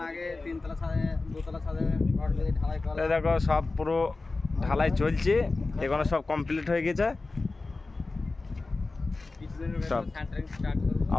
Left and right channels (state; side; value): quieter; right; 3.5 dB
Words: দেখো সব পুরো ঢালাই চলছে, এখানে সব কমপ্লিট হয়ে গেছে, সব